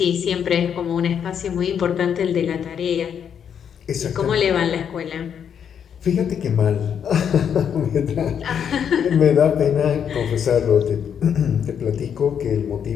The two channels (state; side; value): quieter; right; 8.1 dB